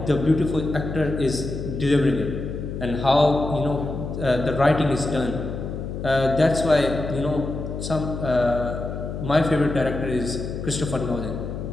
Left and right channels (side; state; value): left; noise; hum, 6 dB below the sound